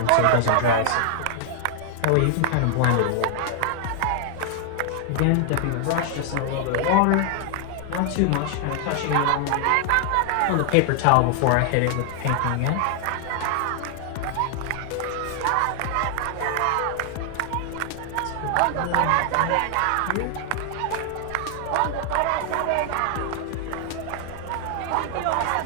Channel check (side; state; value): both; different; correlation 0.00